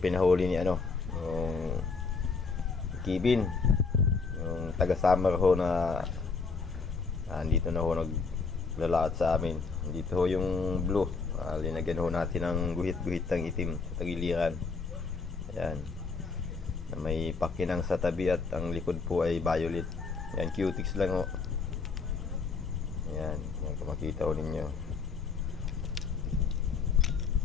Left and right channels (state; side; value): quieter; right; 4.8 dB